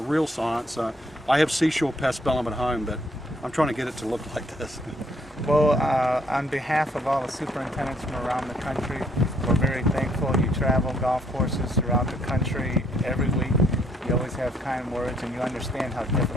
science. I have Seashore Paspalum at home, but I'm trying to get it to look like this. Well, on behalf of all the superintendents from around the country, we're very thankful. You travel golf courses throughout the country every week. You always have kind words, and you understand how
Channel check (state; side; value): normal; both; correlation 0.67